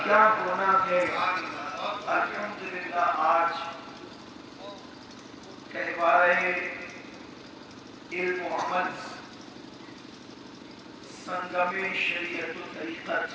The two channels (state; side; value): identical; both; correlation 1.00